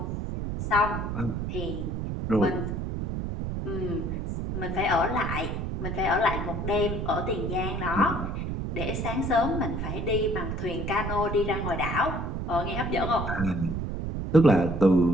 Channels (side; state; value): right; noise; rumble, 3 dB below the sound